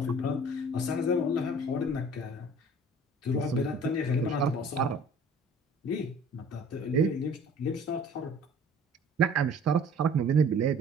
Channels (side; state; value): both; normal; correlation 0.49